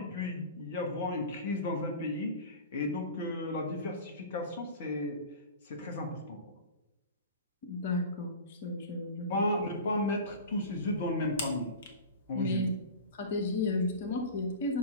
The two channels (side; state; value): both; inverted; correlation -0.33